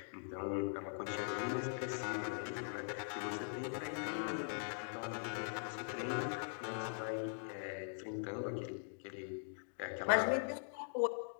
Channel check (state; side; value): silent; right; digital silence